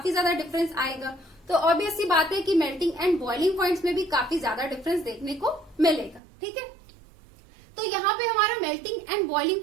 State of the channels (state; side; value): drops out; left; at 6.2 s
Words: ज्यादा डिफरेंस आएगा। तो ऑब्वियस सी बात है कि मेल्टिंग एंड बॉइलिंग पॉइंट्स में भी काफी ज्यादा डिफरेंस देखने को मिलेगा। ठीक है, तो यहाँ पे हमारा मेल्टिंग एंड बॉइलिंग